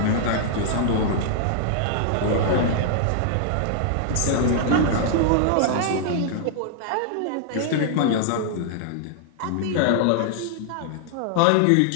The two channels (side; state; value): both; different; correlation -0.01